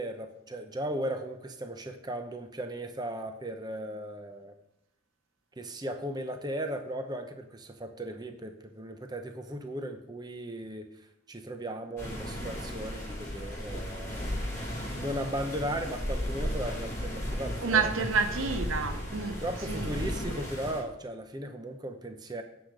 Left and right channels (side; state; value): both; normal; correlation 0.50